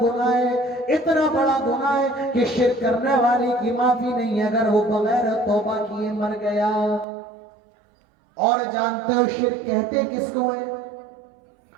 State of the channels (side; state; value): left; drops out; at 7.1 s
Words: گناہ ہے، اتنا بڑا گناہ ہے کہ شرک کرنے والے کی معافی نہیں اگر وہ بغیر توبہ کیے مر گیا۔ اور جانتے ہو شرک کہتے کس کو ہے؟